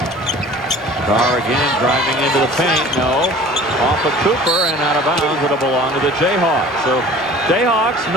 Carr again driving into the paint. No. Off of Cooper and out of bounds. It'll belong to the Jayhawks. So Jayhawks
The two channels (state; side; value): normal; both; correlation 0.45